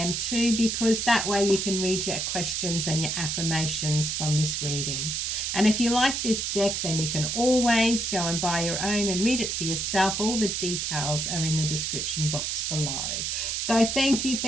too, because that way you can read your questions and your affirmations from this reading. And if you like this deck, then you can always go and buy your own and read it for yourself. All the details are in the description box below. So thank you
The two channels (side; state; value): right; noise; hiss, 1 dB below the sound